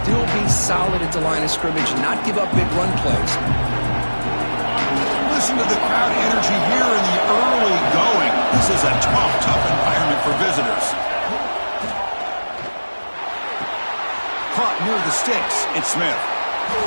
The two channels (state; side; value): inverted; both; correlation -1.00